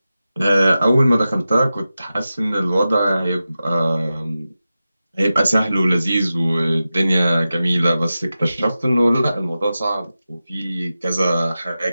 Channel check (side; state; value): both; inverted; correlation -0.93